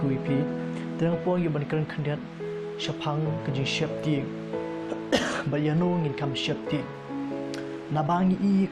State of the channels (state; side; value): identical; both; correlation 1.00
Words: pi teng por ya ban keren khandiat shapang ke jing shep ti ba ya no ngin kam shep ti na bangi i